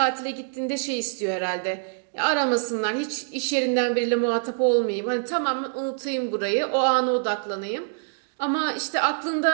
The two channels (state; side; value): silent; left; digital silence